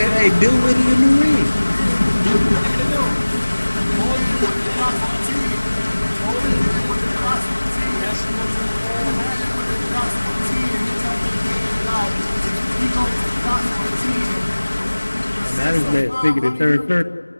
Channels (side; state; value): both; inverted; correlation -1.00